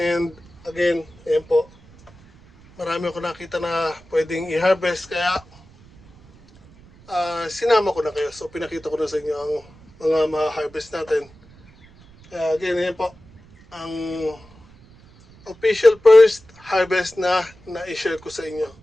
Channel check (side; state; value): right; noise; rumble, 26 dB below the sound